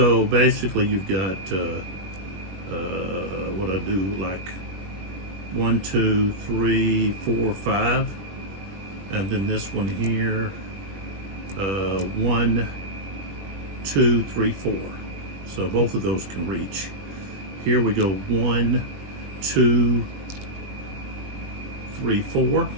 basically you've got what I do, like 1, 2, 3, 4, 5, and then this one here, 1, 2, 3, 4. So both of those can reach. Here we go 1, 2, 3, 4,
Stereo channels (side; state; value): left; late; 21 ms